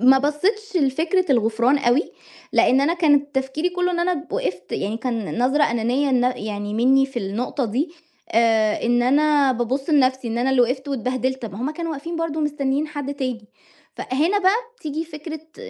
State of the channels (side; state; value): both; identical; correlation 1.00